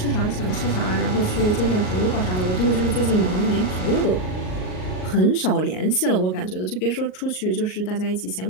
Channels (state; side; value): late; right; 38 ms